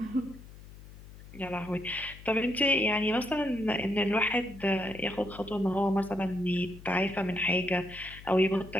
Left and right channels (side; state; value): left; noise; hum, 18 dB below the sound